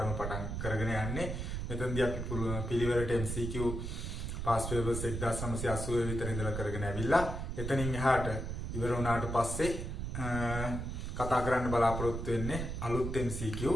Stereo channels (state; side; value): noise; right; rumble, 4 dB below the sound